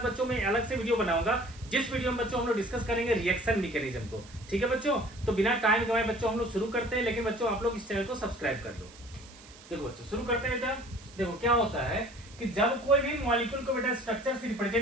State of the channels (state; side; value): noise; right; hiss, 21 dB below the sound